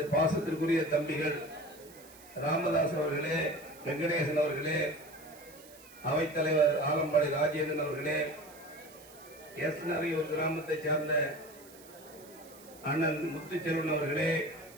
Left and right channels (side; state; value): right; noise; hiss, 21 dB below the sound